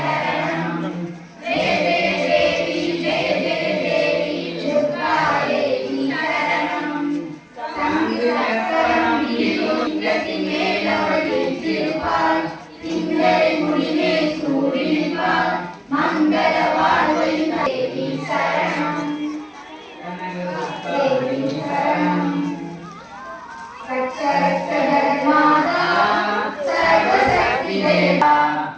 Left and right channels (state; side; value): identical; both; correlation 1.00